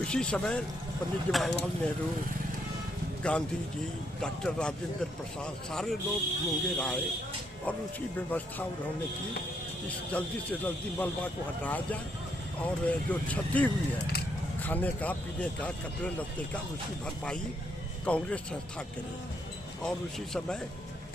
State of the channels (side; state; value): both; normal; correlation 0.74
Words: उसी समय पंडित जवाहरलाल नेहरू, गांधी जी, डॉक्टर राजेंद्र प्रसाद, सारे लोग मुंगेर आए और उसकी व्यवस्था उन्होंने की कि जल्दी से जल्दी मलबा को हटाया जाए और जो क्षति हुई है खाने का, पीने का, कपड़े लत्ते का, उसकी भरपाई कांग्रेस संस्था करे। और उसी समय